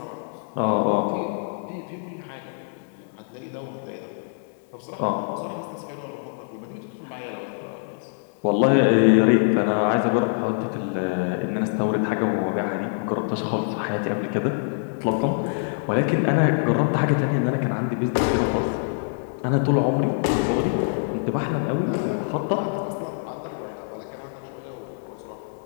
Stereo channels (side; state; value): right; silent; 62 dB below the other